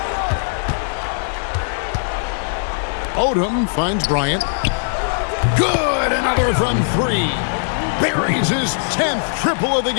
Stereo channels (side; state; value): right; silent; 66 dB below the other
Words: Odom finds Bryant. Good, another from 3. buries his 10th triple of the